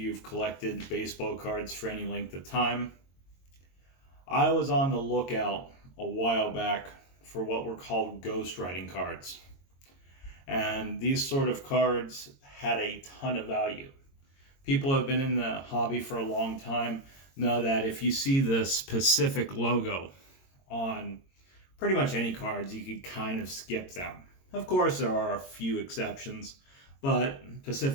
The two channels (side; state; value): right; late; 22 ms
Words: collected baseball cards for any length of time. I was on the lookout a while back for what were called ghostwriting cards. And these sort of cards had a ton of value. People who have been in the hobby for a long time know that if you see the specific logo on pretty much any cards, you can kind of skip them. Of course, there are a few exceptions, but